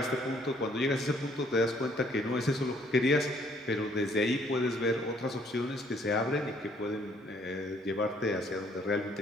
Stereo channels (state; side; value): normal; both; correlation 0.63